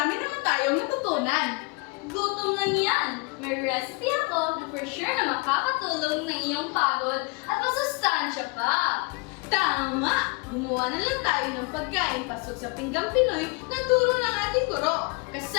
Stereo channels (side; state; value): right; quieter; 29.1 dB